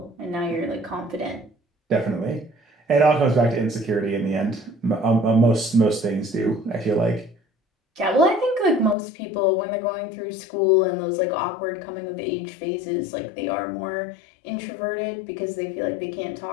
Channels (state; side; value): drops out; right; at 9.0 s